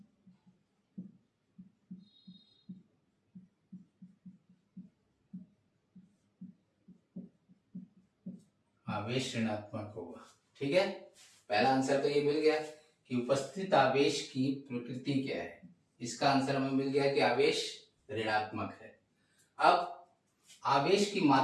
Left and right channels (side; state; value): both; identical; correlation 1.00